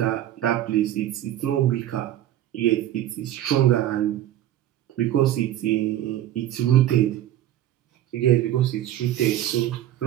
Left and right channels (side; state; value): left; quieter; 12.6 dB